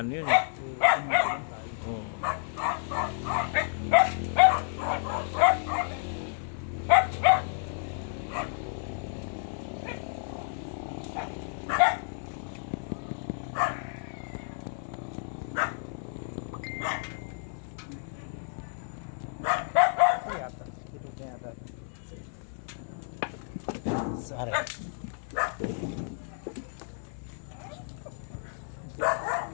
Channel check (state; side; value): silent; right; digital silence